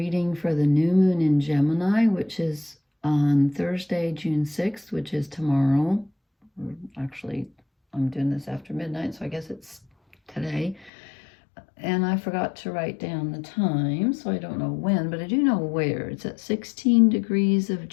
for the new moon in Gemini, which is on Thursday, June 6th, which is tomorrow. Actually, I'm doing this after midnight, so I guess it's today. And I forgot to write down the time, so I don't know when, but I do know where. It's at 16 degrees of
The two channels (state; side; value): drops out; right; at 10.9 s